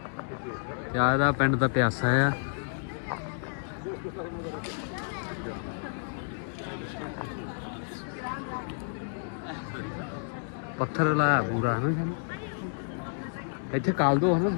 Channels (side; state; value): right; silent; digital silence